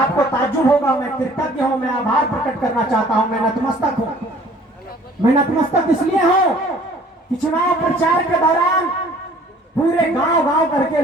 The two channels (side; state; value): both; normal; correlation 0.54